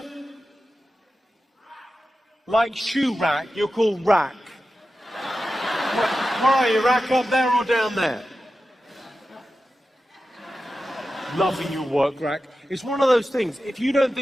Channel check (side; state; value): both; normal; correlation 0.93